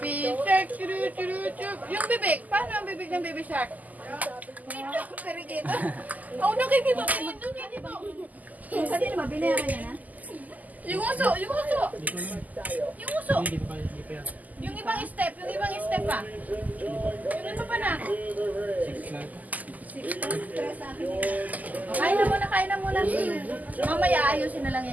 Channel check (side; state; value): left; late; 0.080 ms